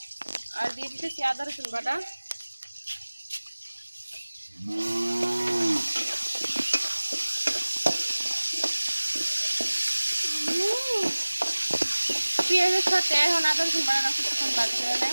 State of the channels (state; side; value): inverted; both; correlation -1.00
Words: আর দিয়ে দিতেছি আদা রসুন বাটা। পেঁয়াজের সাথে এখন আদা রসুন বাটা কিছুক্ষণ ভাজতে